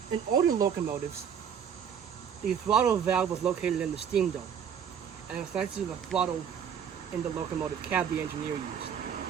In older locomotives, the throttle valve was located in the steam dome, and it's next to the throttle in the locomotive cab the engineer used.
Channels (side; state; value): left; quieter; 8.0 dB